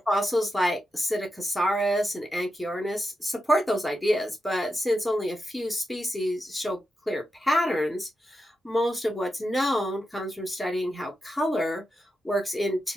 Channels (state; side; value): normal; both; correlation 0.88